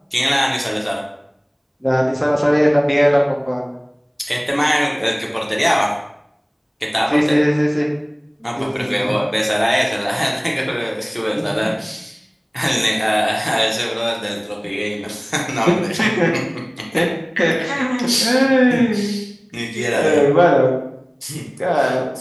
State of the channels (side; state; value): both; identical; correlation 1.00